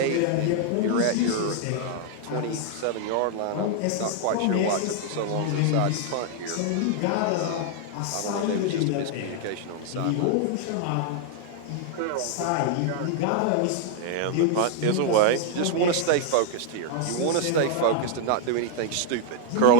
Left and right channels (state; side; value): different; both; correlation 0.00